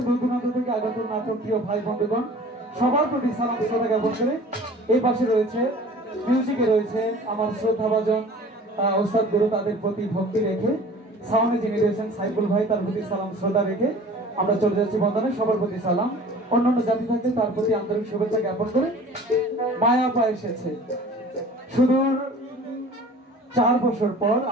দূর দূরান্ত থেকে আগত নাটক প্রিয় ভাই বন্ধুগণ সবার প্রতি সালাম শ্রদ্ধা জ্ঞাপন করে এই পাশে রয়েছে মিউজিকে রয়েছে আমার শ্রদ্ধাভাজন ওস্তাদ গুরু, তাদের প্রতি ভক্তি রেখে সাউন্ডে যিনি রয়েছেন সাইফুল ভাই, তার প্রতি সালাম শ্রদ্ধা রেখে আমরা চলে যাচ্ছি বন্দনে। সবার প্রতি সালাম। অন্যান্য জাতি থাকতে তার প্রতি আন্তরিক শুভেচ্ছা জ্ঞাপন করে মায়া পা এসেছে সুদূর 4 বছর পর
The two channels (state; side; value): normal; both; correlation 0.45